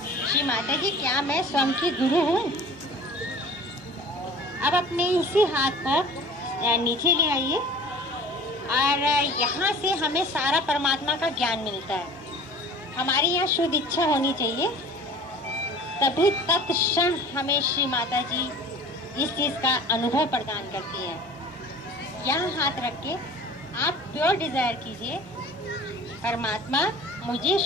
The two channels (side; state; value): both; normal; correlation 0.43